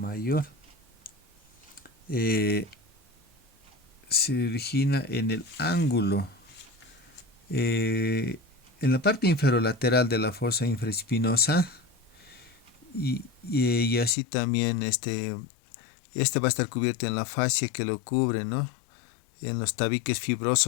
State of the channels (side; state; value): right; drops out; at 14.2 s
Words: eh, se origina en el ángulo, eh, en la parte inferolateral de la fosa infraespinosa y así también este va a estar cubierto en la fascia que lo cubre, ¿no? En los tabiques